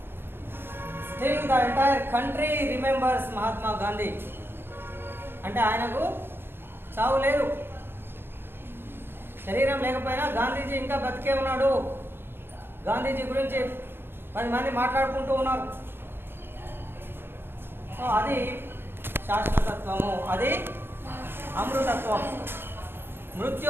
still the entire country remembers Mahatma Gandhi. అంటే ఆయనకు చావు లేదు. శరీరం లేకపోయినా గాంధీజీ ఇంకా బతికే ఉన్నాడు. గాంధీజీ గురించి 10 మంది మాట్లాడుకుంటూ ఉన్నారు. సో అది శాశ్వతత్వము, అది అమృతత్వం.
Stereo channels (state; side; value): late; left; 0.10 ms